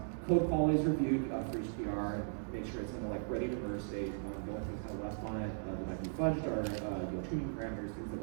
Code quality is reviewed for each PR, and make sure it's in the ready to merge state. The only things kind of left on it that might be fudged are tuning parameters, things that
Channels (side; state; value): left; silent; digital silence